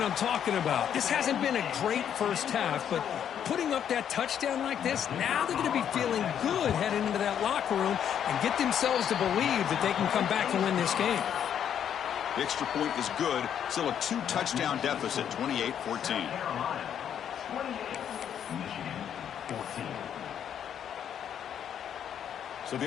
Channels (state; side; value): quieter; right; 9.1 dB